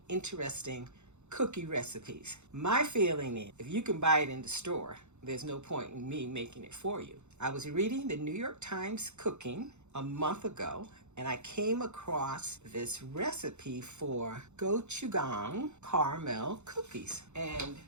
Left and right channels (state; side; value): late; left; 0.83 ms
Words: interesting cookie recipes. My feeling is if you can buy it in the store, there's no point in me making it for you. I was reading the New York Times Cooking a month ago, and I came across this recipe for Gochujang caramel cookies. And